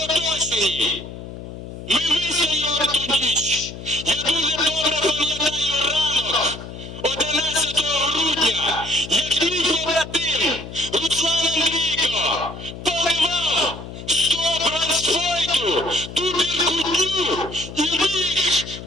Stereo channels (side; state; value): left; noise; hum, 11 dB below the sound